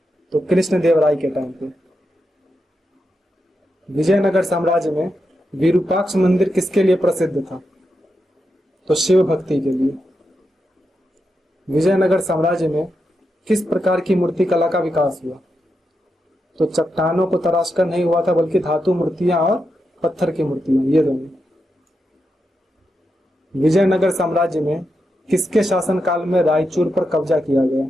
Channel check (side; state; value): both; normal; correlation 0.86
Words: तो कृष्णदेवराय के टाइम पे। विजयनगर साम्राज्य में विरूपाक्ष मंदिर किसके लिए प्रसिद्ध था? तो शिव भक्ति के लिए। विजयनगर साम्राज्य में किस प्रकार की मूर्ति कला का विकास हुआ? तो चट्टानों को तराशकर नहीं हुआ था, बल्कि धातु मूर्तियां और पत्थर की मूर्तियां, ये दोनों। विजयनगर साम्राज्य में किसके शासनकाल में रायचूर पर कब्जा किया गया?